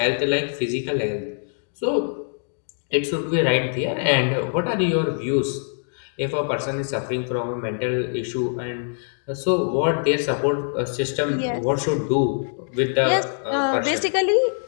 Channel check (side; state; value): right; silent; digital silence